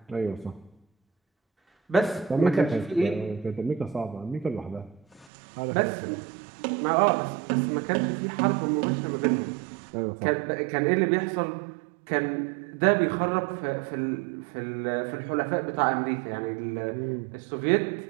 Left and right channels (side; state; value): left; drops out; at 5.3 s